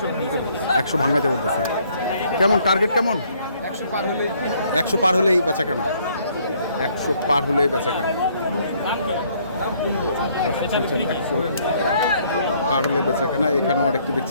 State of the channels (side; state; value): both; inverted; correlation -0.65